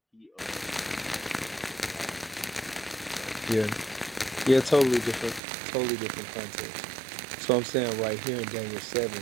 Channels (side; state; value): left; drops out; at 5.4 s